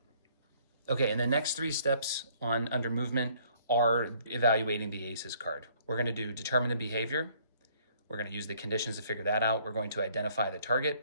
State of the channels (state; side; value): inverted; both; correlation -0.61